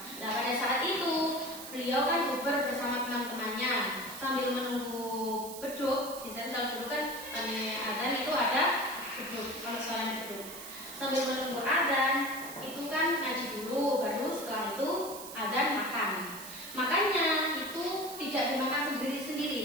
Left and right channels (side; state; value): right; noise; hiss, 12 dB below the sound